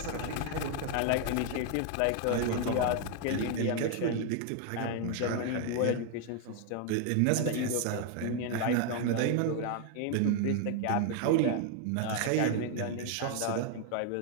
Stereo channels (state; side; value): different; both; correlation 0.01